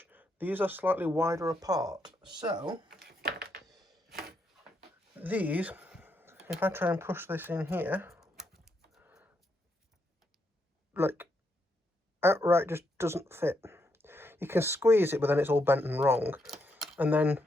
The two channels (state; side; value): normal; both; correlation 0.79